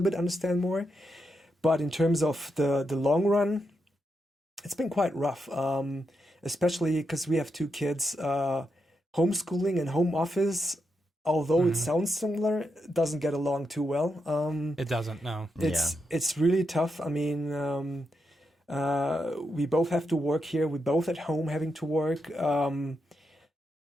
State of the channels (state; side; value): normal; both; correlation 0.84